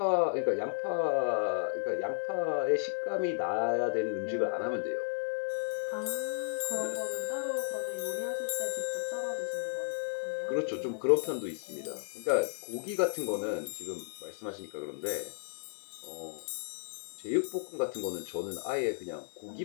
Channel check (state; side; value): silent; right; digital silence